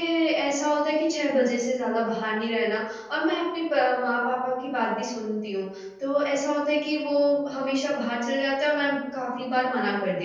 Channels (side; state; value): both; identical; correlation 1.00